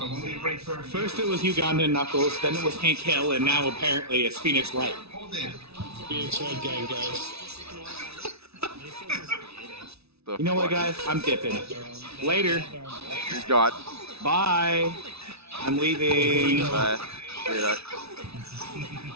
First it was Ugandan Knuckles, then it was Hank Hill, and now apparently it's Phoenix Wright. VRChat gang, guys. You know what, guys? I'm dipping. Later. He's gone. Bye. I'm leaving. Bye. See ya.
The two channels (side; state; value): left; late; 0.79 ms